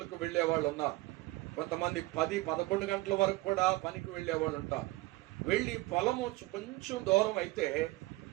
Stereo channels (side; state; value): left; quieter; 20.5 dB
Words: వెళ్లే వాళ్ళు ఉన్నారు, కొంతమంది 10-11 గంటల వరకు కూడా పనికి వెళ్లే వాళ్ళు ఉంటారు. వెళ్ళి పొలము కొంచెం దూరం అయితే